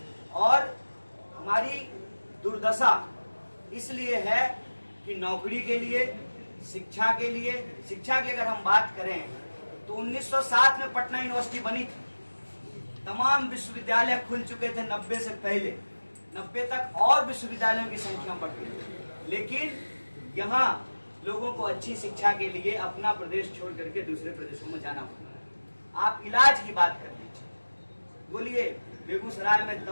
और हमारी दुर्दशा इसलिए है कि नौकरी के लिए, शिक्षा के लिए, शिक्षा की अगर हम बात करें तो 1907 में पटना यूनिवर्सिटी बनी थी। तमाम विश्वविद्यालय खुल चुके थे 90 से पहले, 90 तक और विश्वविद्यालयों की संख्या बढ़ गई। लेकिन यहाँ लोगों को अच्छी शिक्षा के लिए अपना प्रदेश छोड़ करके दूसरे प्रदेशों में जाना पड़ता है। आप इलाज की बात कर लीजिए, बोलिए बेगूसराय में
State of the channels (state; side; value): inverted; both; correlation -1.00